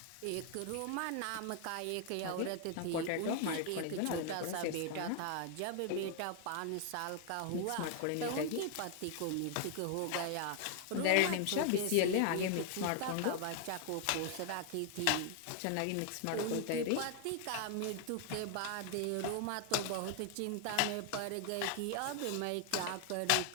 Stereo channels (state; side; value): different; both; correlation 0.00